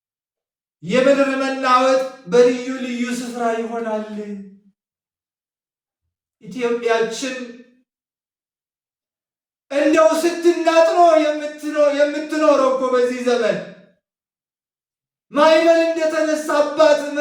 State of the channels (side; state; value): both; identical; correlation 1.00